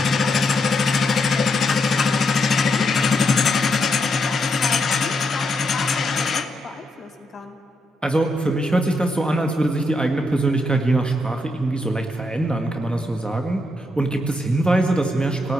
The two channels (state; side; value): normal; both; correlation 0.80